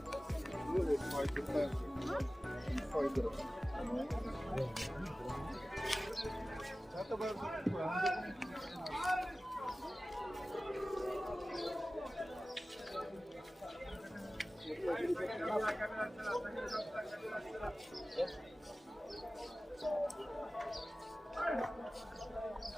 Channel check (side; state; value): both; normal; correlation 0.96